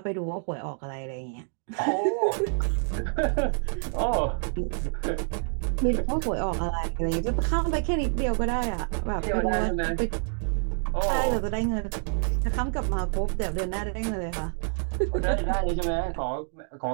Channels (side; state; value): left; silent; 60 dB below the other